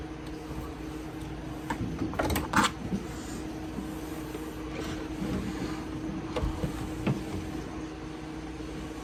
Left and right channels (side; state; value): both; identical; correlation 1.00